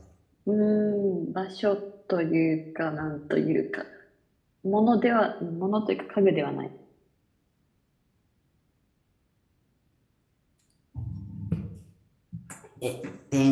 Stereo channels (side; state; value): both; identical; correlation 1.00